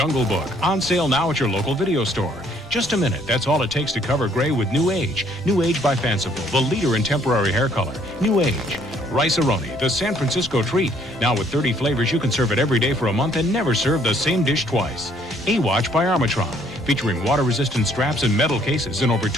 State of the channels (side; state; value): both; normal; correlation 0.64